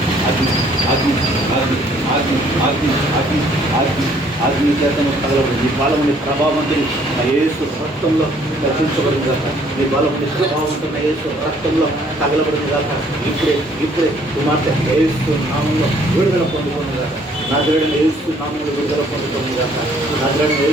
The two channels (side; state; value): both; normal; correlation 0.62